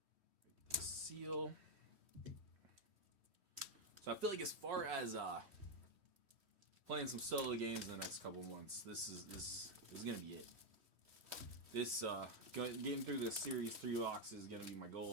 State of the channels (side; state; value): left; late; 3.1 ms